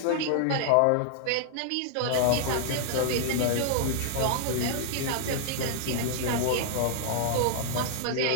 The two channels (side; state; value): both; different; correlation -0.01